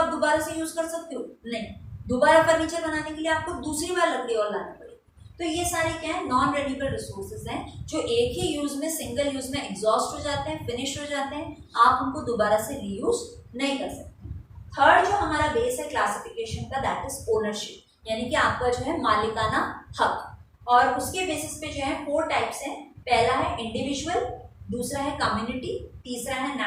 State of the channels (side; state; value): both; identical; correlation 1.00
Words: दोबारा से यूज कर सकते हो? नहीं। दोबारा फर्नीचर बनाने के लिए आपको दूसरी बार लकड़ी और लानी पड़ेगी। तो ये सारे क्या है, नॉन रेन्यूएबल रिसोर्सेज हैं जो एक ही यूज में, सिंगल यूज में एग्जॉस्ट हो जाते हैं, फिनिश हो जाते हैं, आप उनको दोबारा से रीयूज नहीं कर सकते। थर्ड जो हमारा बेस है क्लासिफिकेशन का, दैट इज ओनरशिप, यानी कि आपका जो है मालिकाना हक। और उसके बेसिस पे जो है 4 टाइप्स हैं। पहला है इंडिविजुअल, दूसरा है कम्युनिटी, तीसरा है